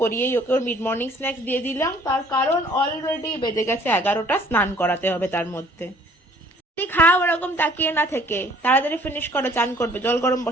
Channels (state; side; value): normal; both; correlation 0.56